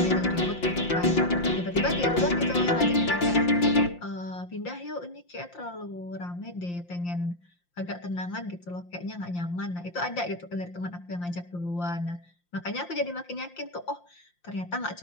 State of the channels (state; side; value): late; right; 5.7 ms